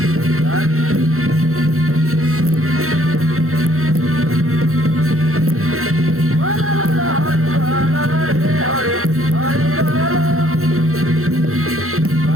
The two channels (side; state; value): left; late; 0.63 ms